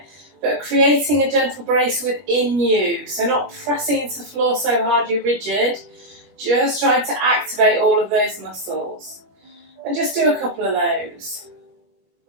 but creating a gentle brace within you. So not pressing into the floor so hard you're rigid, just trying to activate all of those muscles. And just do a couple of those.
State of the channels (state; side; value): late; left; 20 ms